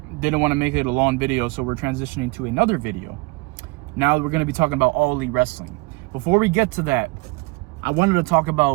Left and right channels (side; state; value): left; quieter; 26.1 dB